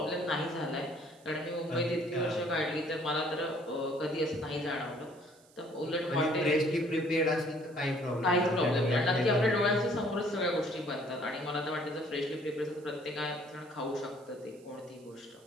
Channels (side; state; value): right; noise; hiss, 28 dB below the sound